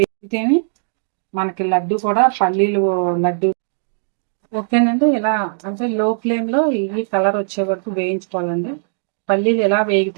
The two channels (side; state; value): left; silent; digital silence